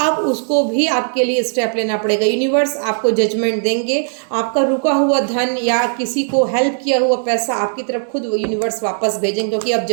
उसको भी आपके लिए स्टेप लेना पड़ेगा। यूनिवर्स आपको जजमेंट देंगे, आपका रुका हुआ धन या किसी को हेल्प किया हुआ पैसा आपकी तरफ खुद यूनिवर्स वापस भेजेंगे, क्योंकि अब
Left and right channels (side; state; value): left; silent; digital silence